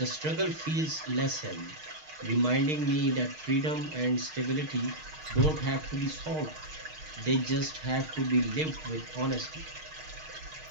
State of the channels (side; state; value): left; late; 6.4 ms